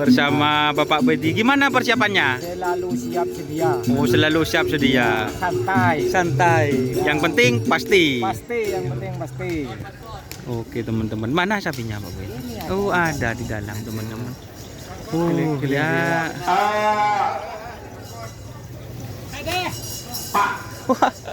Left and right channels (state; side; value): identical; both; correlation 1.00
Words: Bapak Bedi. Gimana persiapannya? Selalu siap sedia. Oh, selalu siap sedia. Santai. Santai. Yang penting pasti. Pasti, yang penting pasti. Oke teman-teman, mana sapinya Pak Bedi? Oh, ada di dalam teman-teman. Oh ya. Wah,